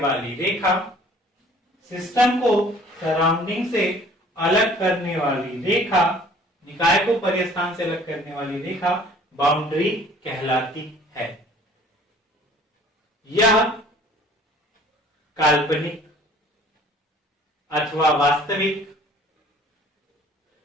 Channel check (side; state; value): both; normal; correlation 0.52